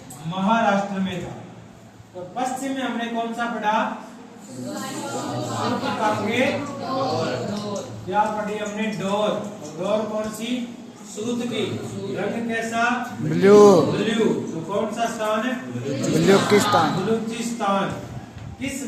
महाराष्ट्र में था। तो पश्चिम में हमने कौन सा पढ़ा? क्या पढ़ी हमने? डोर। डोर कौन सी? सूत की। रंग कैसा? ब्लू। ब्लू। तो कौन सा स्थान है? बलूचिस्तान। बलूचिस्तान। किस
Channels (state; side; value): identical; both; correlation 1.00